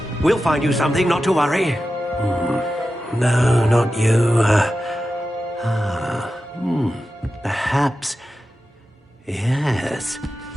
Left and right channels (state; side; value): normal; both; correlation 0.92